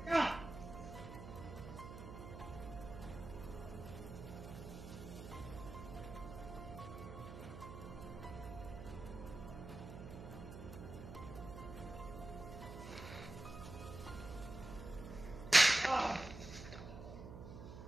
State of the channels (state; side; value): noise; right; hum, 10 dB below the sound